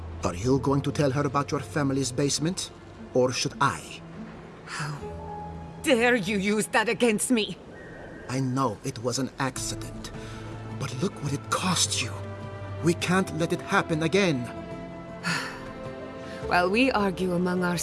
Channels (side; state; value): both; identical; correlation 1.00